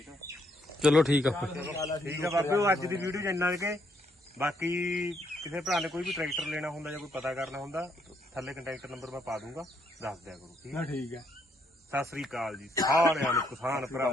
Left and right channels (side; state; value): both; normal; correlation 0.73